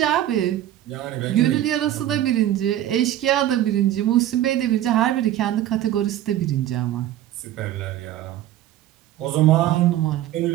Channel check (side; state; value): left; quieter; 12.8 dB